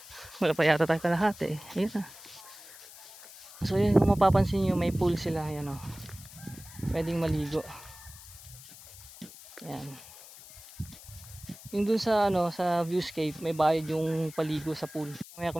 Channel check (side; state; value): left; noise; hiss, 18 dB below the sound